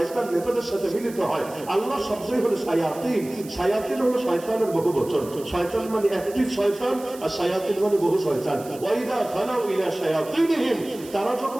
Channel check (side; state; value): right; noise; hiss, 19 dB below the sound